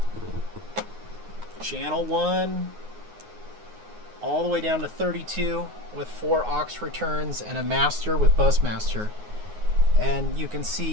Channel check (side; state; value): left; late; 9.6 ms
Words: channel 1 all the way down to 32 with 4 aux returns and a master with bus master. And you can